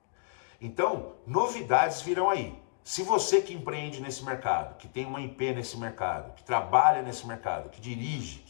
Então, novidades virão aí. Se você que empreende nesse mercado, que tem uma IP nesse mercado, que trabalha nesse mercado, que dirige,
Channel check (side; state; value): right; silent; digital silence